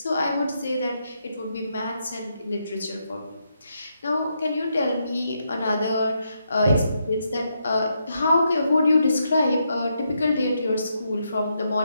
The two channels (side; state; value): both; inverted; correlation -0.80